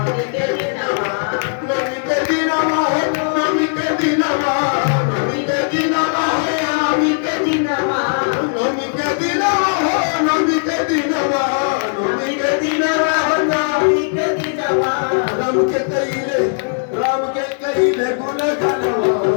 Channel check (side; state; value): right; silent; digital silence